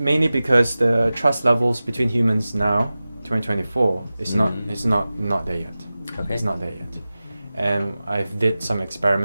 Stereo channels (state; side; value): inverted; both; correlation -0.96